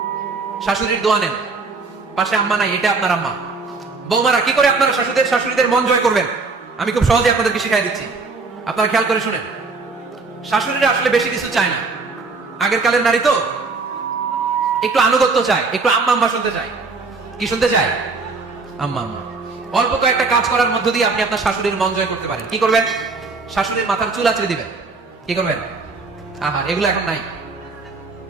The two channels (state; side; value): quieter; left; 4.1 dB